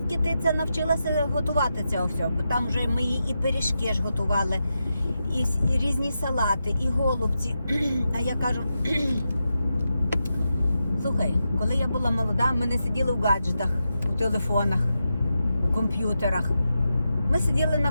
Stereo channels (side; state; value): both; inverted; correlation -0.88